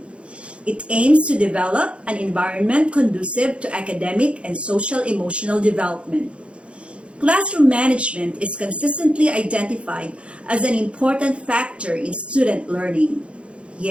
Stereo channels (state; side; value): late; left; 0.060 ms